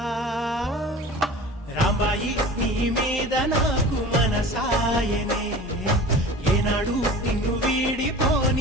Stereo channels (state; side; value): normal; both; correlation 0.39